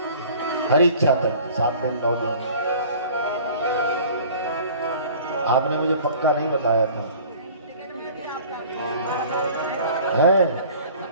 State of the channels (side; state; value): both; inverted; correlation -0.47